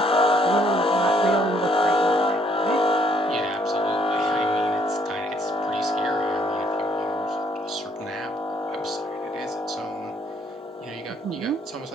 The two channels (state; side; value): normal; both; correlation 0.67